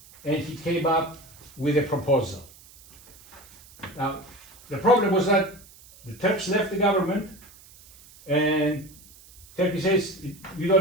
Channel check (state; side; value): noise; right; hiss, 23 dB below the sound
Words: and he came up with a proposal. Now, the problem was that the Turks left the government, and Turkey says, you